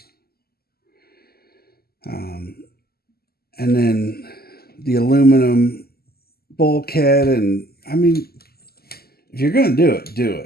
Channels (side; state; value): right; late; 0.45 ms